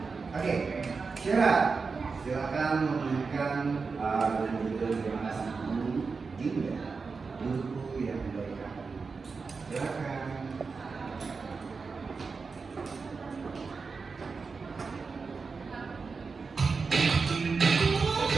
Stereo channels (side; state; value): left; quieter; 4.7 dB